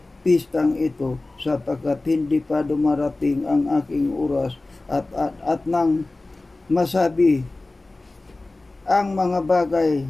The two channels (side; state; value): right; quieter; 3.0 dB